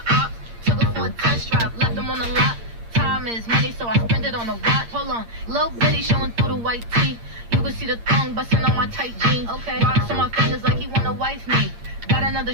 ops. Took her for a test drive, left them on the lot. Time is money, so I spend it on a watch. Hold on, little bitty showing through the white tee. You can see the thong busting on my tight jeans. Okay, rocks on my fingers like he wanna wife me. Got another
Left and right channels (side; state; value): left; late; 8.7 ms